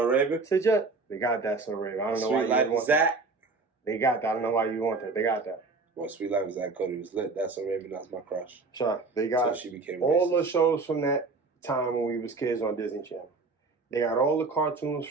Raven. Say Just. They got that so Raven. I don't know Sweet why Life you is want that. that. They got that. I don't know why you want that. They got that. Well, Sweet Life is that Cody was lit. That's so Raven. That's my crush. Sure. They got So she became all racist. the shows from that time when we was kids on Disney Channel. They got all the cartoons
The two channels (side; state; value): left; quieter; 3.9 dB